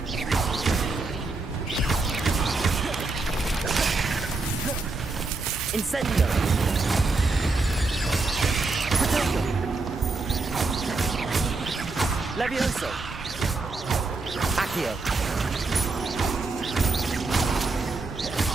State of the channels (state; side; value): quieter; left; 3.6 dB